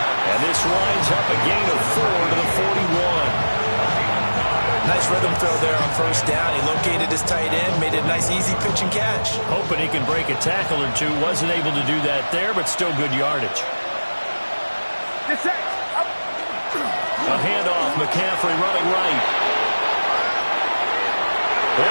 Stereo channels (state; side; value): inverted; both; correlation -1.00